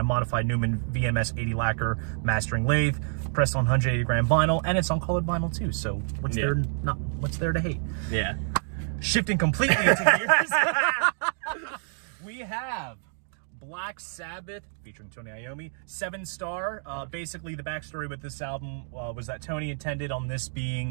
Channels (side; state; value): left; silent; 60 dB below the other